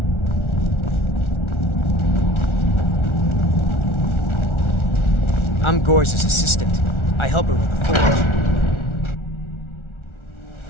I'm Gorza's assistant. I help her with the forge.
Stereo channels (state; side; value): late; right; 1.4 ms